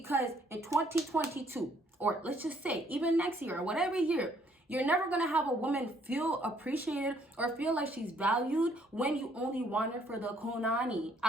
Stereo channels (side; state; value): both; normal; correlation 0.65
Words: in 2022, or let's just say even next year or whatever year, you're never going to have a woman feel appreciated or feel like she's valued when you only want her for the kunani.